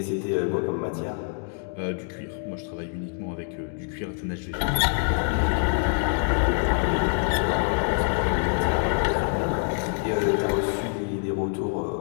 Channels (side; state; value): right; silent; 61 dB below the other